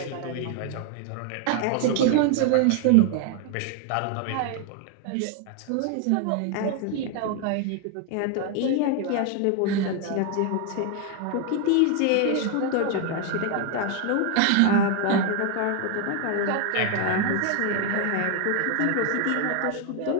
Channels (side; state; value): both; different; correlation 0.00